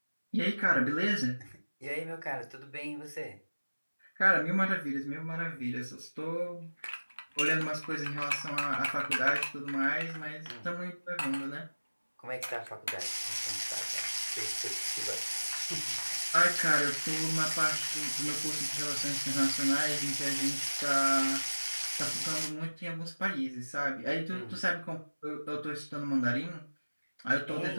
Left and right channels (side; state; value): both; inverted; correlation -1.00